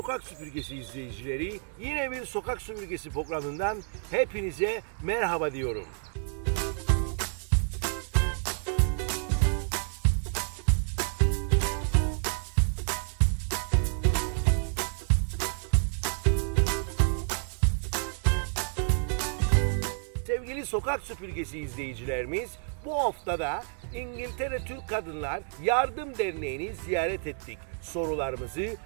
Süpürgesi izleyicileri, yine bir Sokak Süpürgesi programından hepinize merhaba diyorum. Sevgili Sokak Süpürgesi izleyicilerimiz, bu haftada İngiltere Türk Kadınlar Yardım Derneği'ni ziyaret ettik. Sorularımızı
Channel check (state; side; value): silent; left; 58 dB below the other